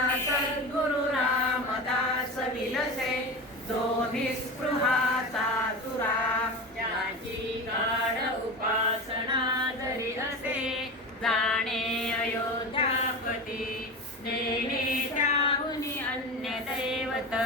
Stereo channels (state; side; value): normal; both; correlation 0.27